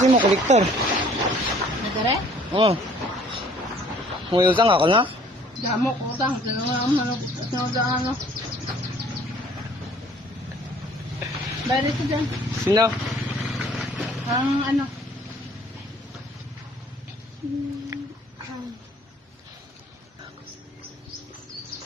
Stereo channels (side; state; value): both; normal; correlation 0.56